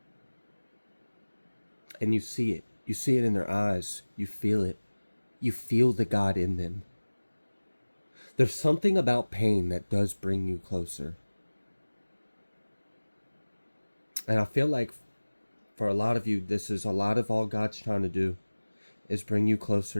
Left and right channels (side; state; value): both; inverted; correlation -1.00